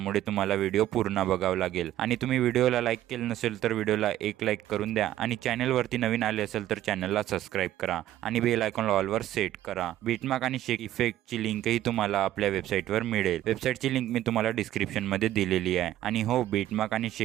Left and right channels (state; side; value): quieter; left; 13.2 dB